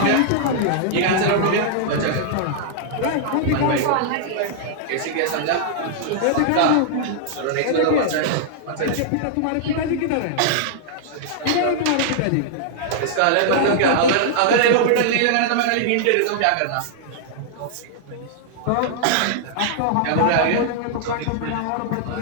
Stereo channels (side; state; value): both; different; correlation -0.01